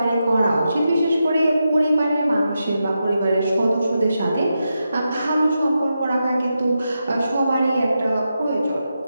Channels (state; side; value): inverted; both; correlation -0.87